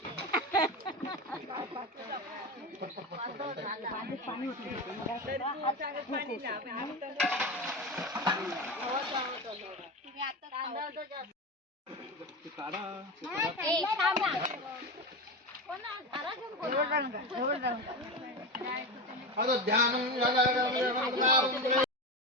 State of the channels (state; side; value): normal; both; correlation 0.21